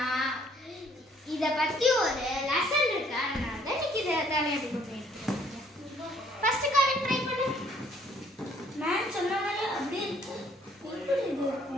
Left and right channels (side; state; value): both; normal; correlation 0.62